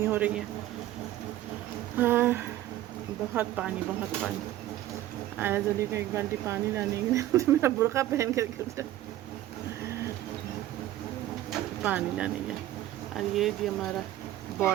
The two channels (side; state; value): left; quieter; 14.0 dB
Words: ہو رہی ہے. ہاں بہت پانی ایاز علی کو ایک بالٹی پانی لانے کے لیے تو میرا برقع پہن کر کے پانی لانے گیا. اور یہ جی ہمارا